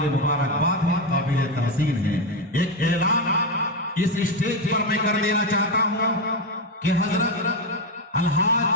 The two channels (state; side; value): normal; both; correlation 0.09